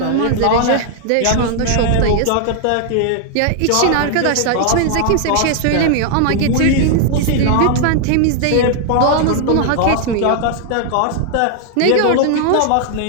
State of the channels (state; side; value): different; both; correlation 0.00